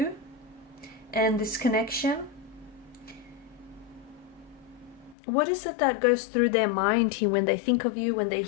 and this connection. What is it that goes through their mind here when they think of you, when they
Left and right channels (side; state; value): right; drops out; at 5.2 s